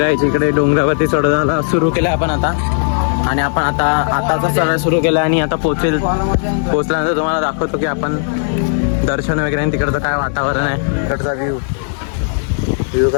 इकडे डोंगरावरती चढायला सुरू केलं आपण आता. आणि आपण आताचा चढायला सुरू केला आणि आता पोचल्यानंतर तुम्हाला दाखवतो की आपण दर्शन वगैरे आणि तिकडचं काय वातावरण आहे. तिकडचा व्ह्यू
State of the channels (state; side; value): silent; right; digital silence